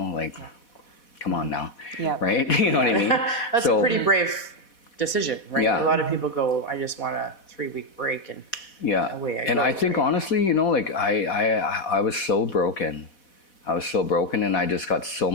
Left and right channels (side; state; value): right; late; 4.1 ms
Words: like, come on now, Yeah. right? You know what I mean? That's a pretty brave decision, right? Yeah. A lot of people go, I just want a 3-week break, and Yeah, away I and go, I think right? honestly, you know, like I was so broken. I was so broken, and I just got so